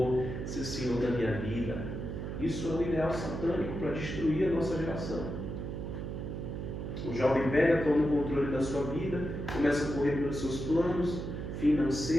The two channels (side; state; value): right; noise; hum, 5 dB below the sound